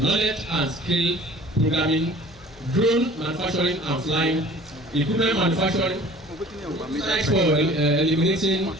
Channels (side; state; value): left; noise; hum, 24 dB below the sound